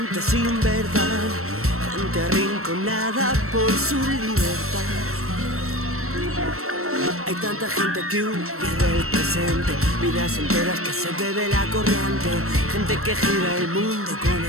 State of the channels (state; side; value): late; left; 0.63 ms